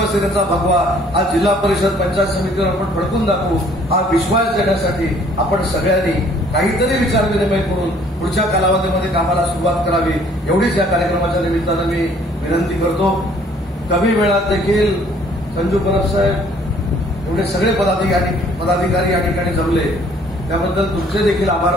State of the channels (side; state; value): both; normal; correlation 0.59